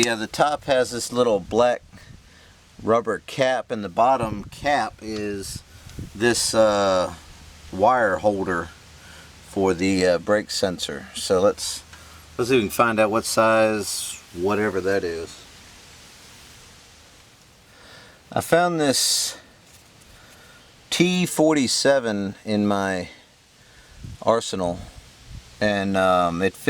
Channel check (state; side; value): identical; both; correlation 1.00